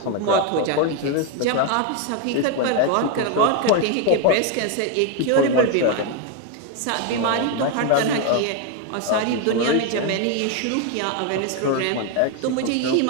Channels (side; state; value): both; different; correlation 0.01